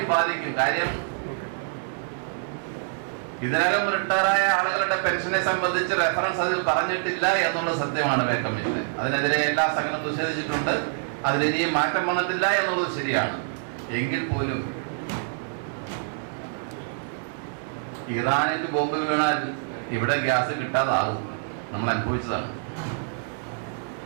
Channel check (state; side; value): silent; left; digital silence